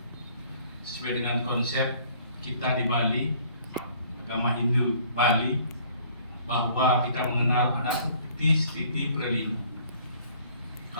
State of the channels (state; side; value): inverted; both; correlation -0.57